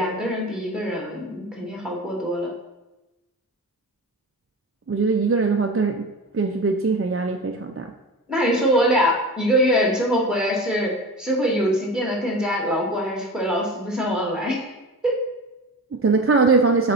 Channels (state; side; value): normal; both; correlation 0.29